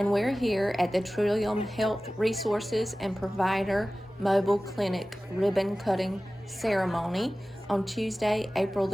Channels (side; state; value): both; normal; correlation 0.97